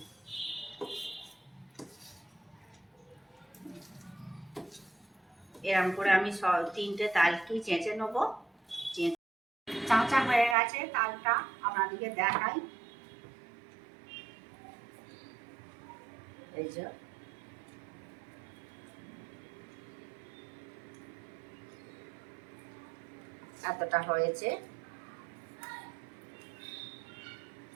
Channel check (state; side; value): drops out; left; at 10.6 s